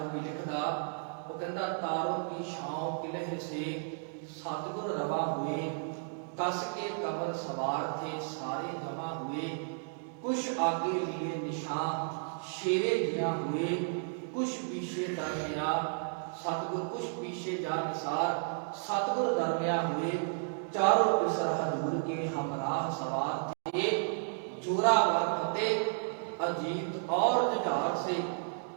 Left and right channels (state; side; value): silent; left; digital silence